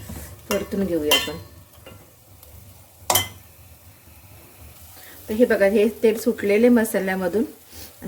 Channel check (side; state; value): both; identical; correlation 1.00